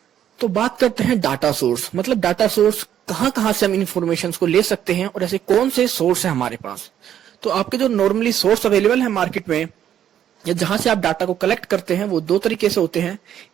तो बात करते हैं डाटा सोर्स। मतलब डाटा सोर्स कहां कहां से हम इंफॉर्मेशन को ले सकते हैं और ऐसे कौन से सोर्स है हमारे पास। तो आपके जो नॉर्मली सोर्स अवेलेबल है मार्केट में या जहां से आप डाटा को कलेक्ट करते हैं, वो दो तरीके से होते हैं।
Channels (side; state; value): left; quieter; 10.3 dB